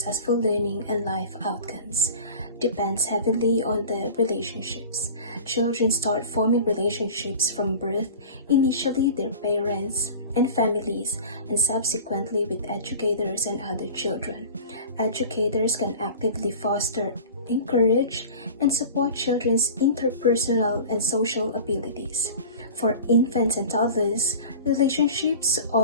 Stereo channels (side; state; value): both; inverted; correlation -0.38